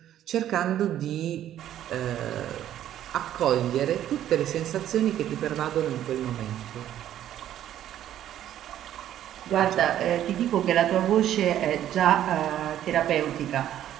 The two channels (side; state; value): left; quieter; 11.6 dB